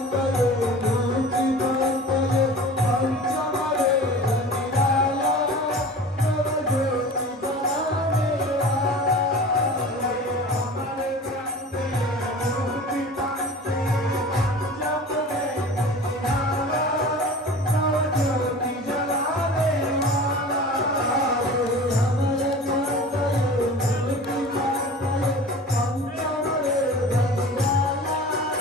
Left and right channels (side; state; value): both; normal; correlation 0.39